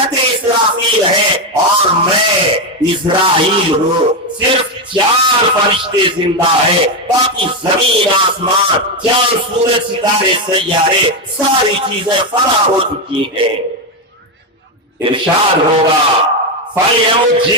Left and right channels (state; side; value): normal; both; correlation 0.08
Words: اسرافیل ہے، اور میں اسرائیل ہوں۔ صرف 4 فرشتے زندہ ہے، باقی زمین آسمان چاند سورج ستارے سیارے ساری چیزیں فنا ہو چکی ہیں۔ ارشاد ہوگا فَيَمُتْ